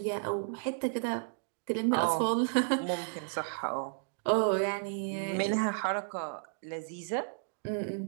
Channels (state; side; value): silent; left; digital silence